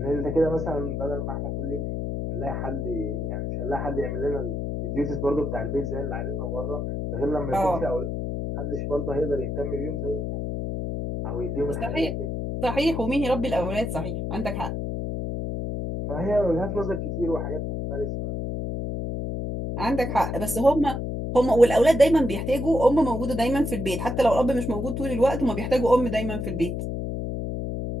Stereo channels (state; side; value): noise; left; hum, 3 dB below the sound